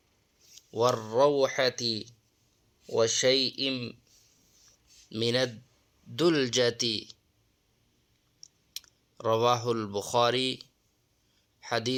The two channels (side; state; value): both; identical; correlation 1.00